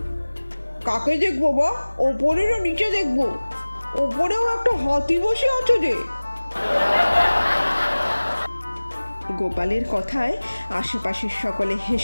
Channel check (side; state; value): both; inverted; correlation -1.00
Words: কাকে দেখবো বা? ওপরে না নিচে দেখবো? ওপরেও একটা হাতি বসে আছে রে। গোপালের কথায় আশেপাশের সকলে